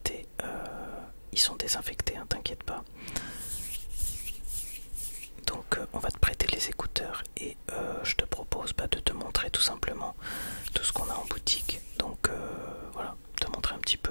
Ils sont désinfectés, hein, t'inquiète pas. Donc on va te prêter les écouteurs et je te propose de te montrer tout simplement tout ce qu'on a en boutique. Donc voilà, te montrer un petit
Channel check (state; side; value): inverted; both; correlation -1.00